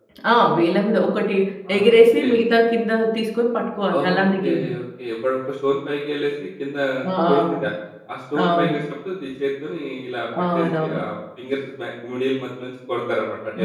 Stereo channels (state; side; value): identical; both; correlation 1.00